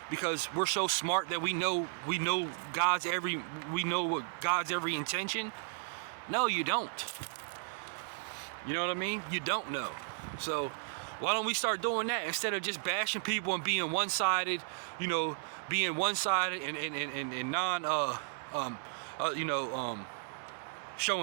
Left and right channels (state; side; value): silent; left; digital silence